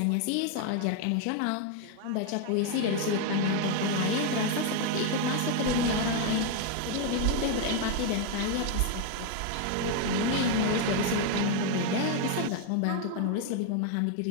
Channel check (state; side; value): different; both; correlation 0.01